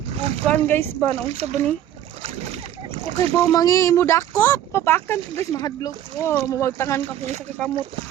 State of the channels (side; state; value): left; quieter; 11.4 dB